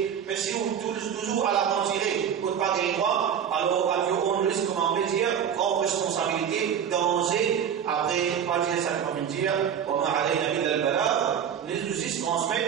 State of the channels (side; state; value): left; quieter; 8.4 dB